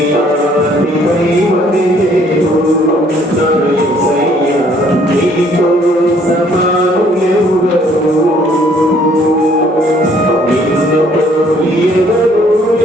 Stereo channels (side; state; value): both; normal; correlation 0.62